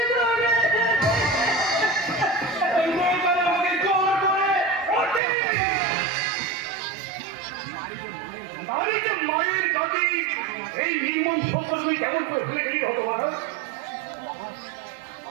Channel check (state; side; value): drops out; left; at 5.2 s